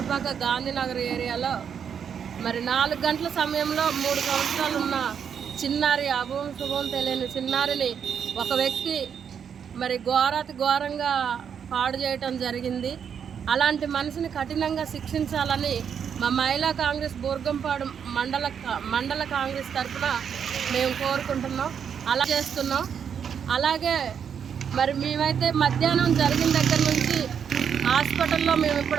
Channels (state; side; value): quieter; left; 7.6 dB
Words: గాంధీనగర్ ఏరియాలో మరి 4 గంటల సమయంలో 3 సంవత్సరాలు ఉన్న చిన్నారి అభం శుభం తెలియని చిన్నారిని ఒక వ్యక్తి మరి ఘోరంగా పాడు చేయటం జరిగింది. అలాంటి మనిషిని కఠినంగా శిక్షించాలని మా మహిళా కాంగ్రెస్ బూర్గంపాడు మండల కాంగ్రెస్ తరఫున మేము కోరుకుంటున్నాం, అలా చేస్తున్నాం. అలాగే మరి మేమైతే మధ్యాహ్నం జరిగిన దగ్గర నుంచి హాస్పిటల్లో మేము